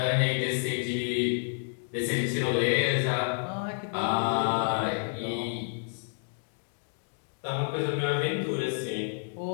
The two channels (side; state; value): right; silent; digital silence